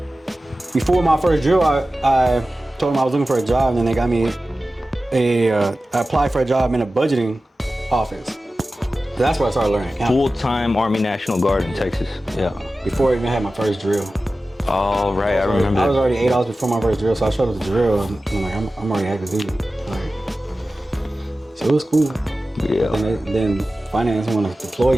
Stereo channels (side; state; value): both; normal; correlation 0.95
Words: before my first drill, I told them I was looking for a job, and then they got me I applied for a job in a budgeting office. So that's where I started learning accounting. Full-time Army National Guard in Texas. Yeah, before I even had my first drill. Oh, right, I remember. I was already 8 hours before my first drill, so I showed up the drill, and I'm like, I'm already active duty. Like, so it was cool. Yeah. And then finance want to deploy